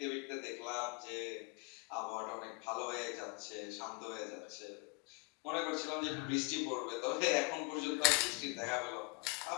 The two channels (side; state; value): right; quieter; 30.2 dB